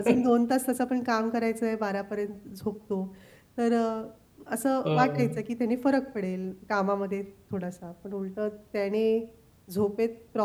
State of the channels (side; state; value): both; identical; correlation 1.00